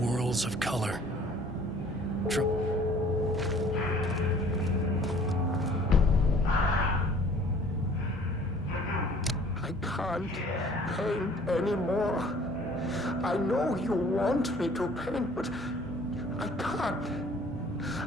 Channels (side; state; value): both; normal; correlation 0.54